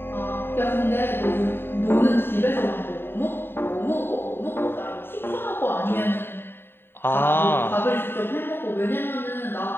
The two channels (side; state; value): right; late; 0.11 ms